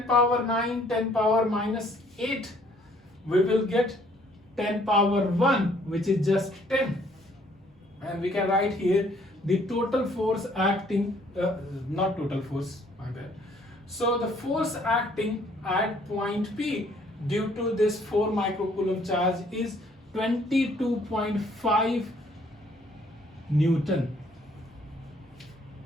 power 9, 10 power minus 8, we will get 10 power 1, which is just 10. And we can write here the total force acting, not total force, my bad. So the force acting at point P due to this 4 microcoulomb charge is 22.5 Newton.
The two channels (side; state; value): both; normal; correlation 0.62